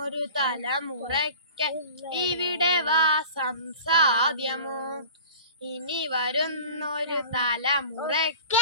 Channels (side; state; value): both; inverted; correlation -0.40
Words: തലമുറയ്ക്ക് ഇവിടെ വാസം സാധ്യമോ? ഇനി വരുന്നൊരു